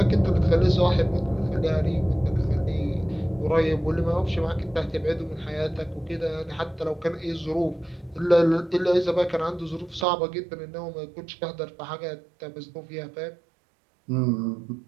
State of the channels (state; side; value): drops out; left; at 10.1 s